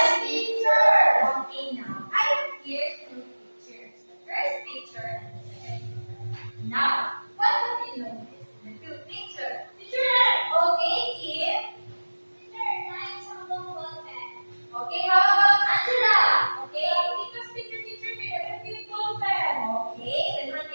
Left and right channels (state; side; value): inverted; both; correlation -1.00